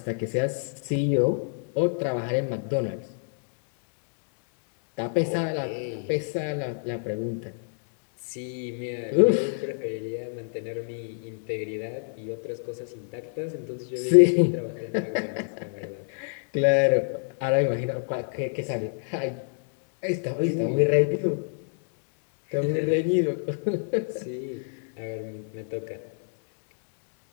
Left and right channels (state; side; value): silent; right; digital silence